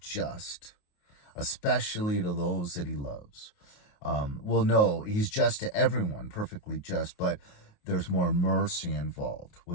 just, especially to those that he loves. No, he's just to everyone, perfectly just, but there's more mercy involved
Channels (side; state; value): right; late; 28 ms